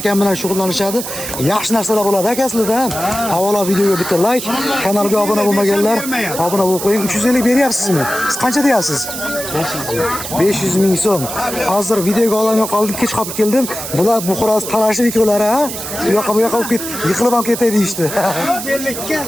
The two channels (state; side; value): noise; right; hiss, 7 dB below the sound